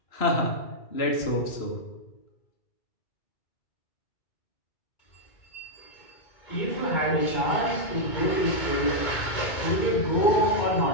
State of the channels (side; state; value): right; late; 2.2 ms